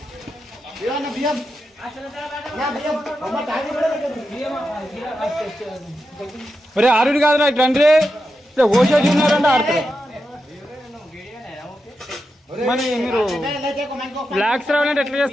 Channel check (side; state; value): both; normal; correlation 0.88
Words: ఒరే ఆరుడు కాదు నాకు రండి ఓసేసి ఉన్నారంటే ఆడుతారు మరి మీరు బ్లాక్స్ రావాలంటే ఎట్లా